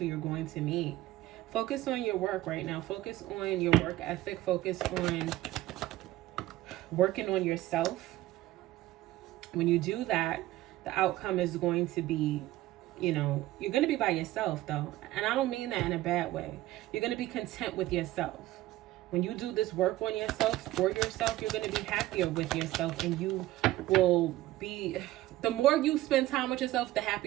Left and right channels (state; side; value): quieter; left; 16.1 dB